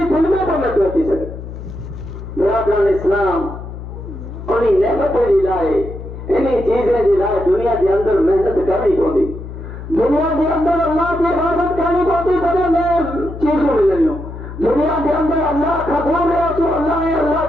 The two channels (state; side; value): noise; left; hum, 11 dB below the sound